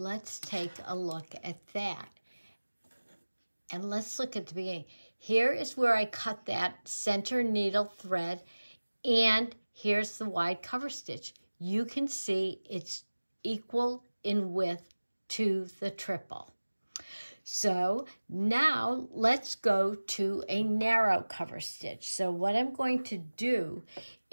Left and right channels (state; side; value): inverted; both; correlation -1.00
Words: take a look at that. And let's look at the beginning. Here is where I cut that center needle thread, and here's the wide cover stitch. You can see it's equal in width to the triple. So now let's go to a narrow cover stitch. So what I'm going to do